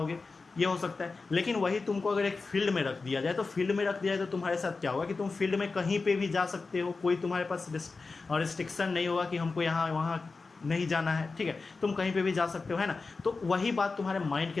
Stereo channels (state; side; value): quieter; right; 4.1 dB